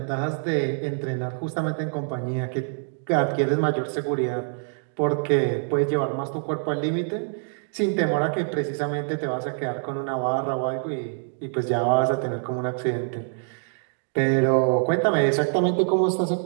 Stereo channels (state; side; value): silent; left; 62 dB below the other